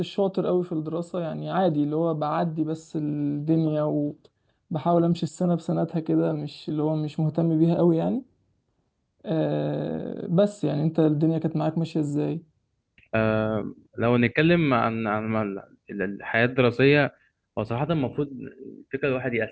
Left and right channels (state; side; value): identical; both; correlation 1.00